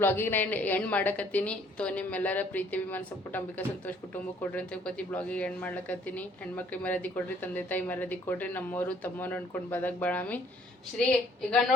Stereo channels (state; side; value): normal; both; correlation 0.62